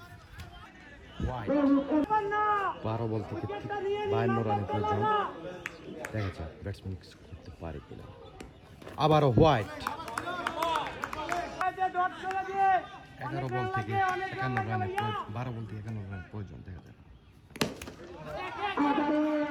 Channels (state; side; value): identical; both; correlation 1.00